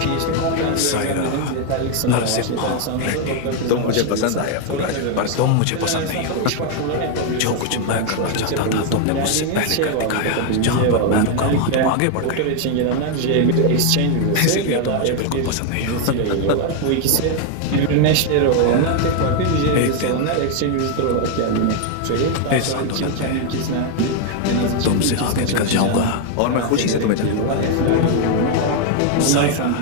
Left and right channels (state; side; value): different; both; correlation 0.01